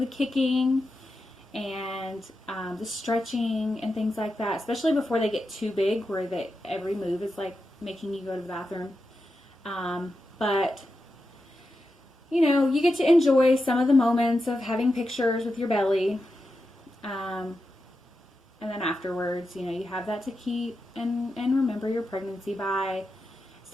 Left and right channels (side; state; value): both; normal; correlation 0.89